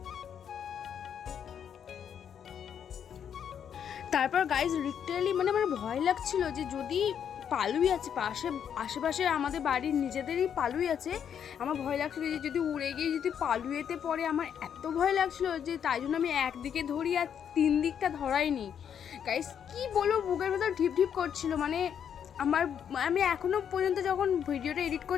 তারপর গাইজ লিটারালি মানে আমার ভয় লাগছিল যে যদি পালুই আছে আশেপাশে আমাদের বাড়ির নিজেদেরই পালুই আছে, আমার ভয় লাগছিল যে যদি উড়ে গিয়ে যদি পালুয়েতে পড়ে, আমার এত ভয় লাগছিল যে তাই জন্য আমি একদিকে ধরি আর 3 দিকটা ধরাইনি। গাইজ কি বলবো, বুকের ভেতর ঢিপ ঢিপ করছিল, মানে আমি এখনও পর্যন্ত যখন ভিডিওটা এডিট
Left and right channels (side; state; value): right; quieter; 8.4 dB